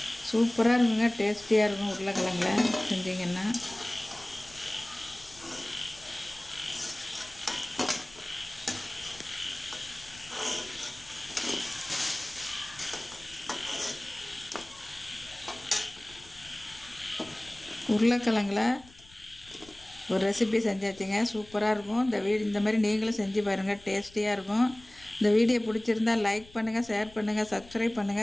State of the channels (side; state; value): left; noise; rumble, 22 dB below the sound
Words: சூப்பராக இருக்குங்க, டேஸ்டியாக இருக்கும். உருளைக்கிழங்குல செஞ்சிங்கன்னா உருளைக்கிழங்குல ஒரு ரெசிபி செஞ்சாச்சுங்க. சூப்பராக இருக்கும். இந்த மாதிரி நீங்களும் செஞ்சு பாருங்கள், டேஸ்டியாக இருக்கும். இந்த வீடியோ பிடிச்சிருந்தால் லைக் பண்ணுங்கள், ஷேர் பண்ணுங்கள், சப்ஸ்கிரைப்